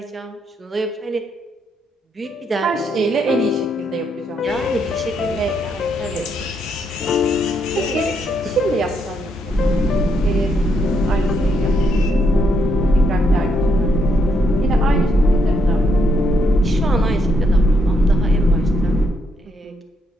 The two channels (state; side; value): normal; both; correlation 0.76